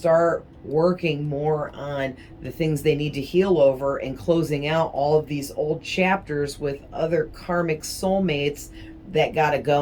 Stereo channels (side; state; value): both; identical; correlation 1.00